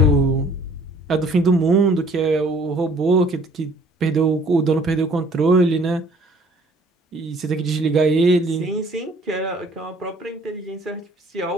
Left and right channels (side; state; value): both; normal; correlation 0.56